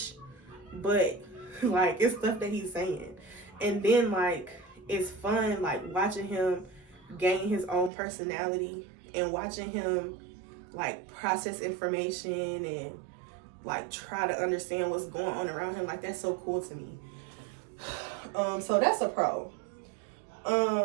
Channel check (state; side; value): drops out; left; at 7.9 s